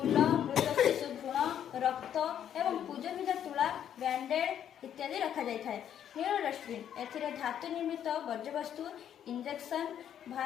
मृत शिशु भ्रूण रक्त एवं पूजनीय तुला बैंडेड इत्यादि रखा जाए। नील डस्टबिन ए धातु निर्मित वर्ज्यवस्तु इंजेक्शन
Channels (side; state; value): right; quieter; 9.7 dB